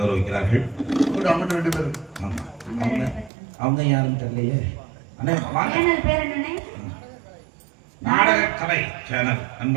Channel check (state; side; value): drops out; left; at 3.3 s